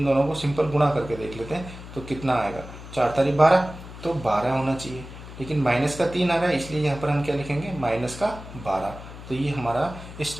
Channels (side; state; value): left; noise; hum, 14 dB below the sound